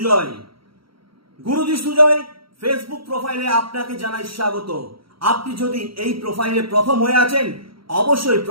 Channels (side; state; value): left; late; 0.74 ms